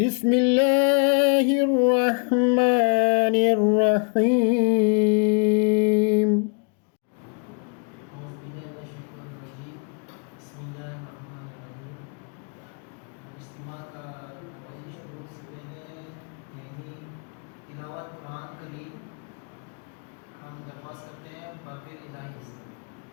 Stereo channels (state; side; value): quieter; right; 39.8 dB